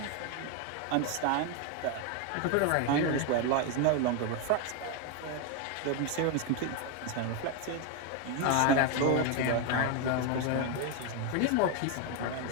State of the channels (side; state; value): both; different; correlation 0.01